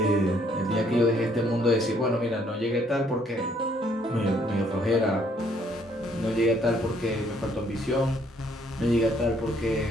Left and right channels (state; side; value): normal; both; correlation 0.65